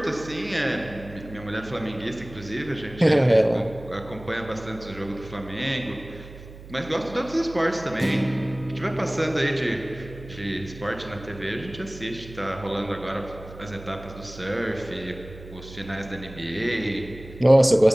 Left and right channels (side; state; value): right; noise; hum, 16 dB below the sound